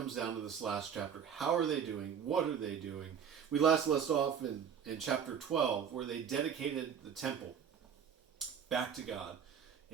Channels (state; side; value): quieter; left; 7.7 dB